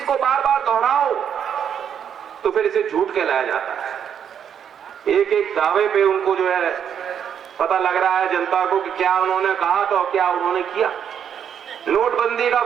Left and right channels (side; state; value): left; quieter; 8.4 dB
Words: को बार बार दोहराओ तो फिर इसे झूठ कहलाया जाता है। एक एक दावे पे उनको जो है पता लग रहा है जनता को कि क्या उन्होंने कहा तो क्या उन्होंने किया। नोटबंदी का